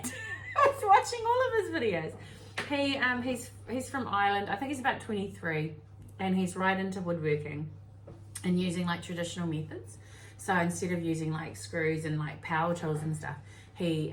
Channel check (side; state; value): both; identical; correlation 1.00